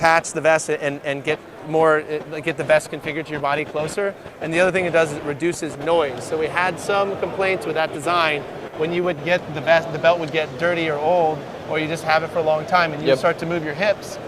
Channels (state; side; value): identical; both; correlation 1.00